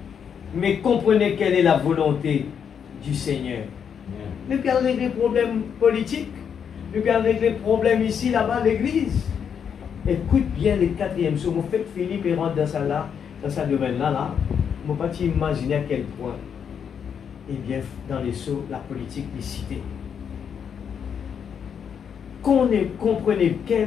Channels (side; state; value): right; quieter; 7.5 dB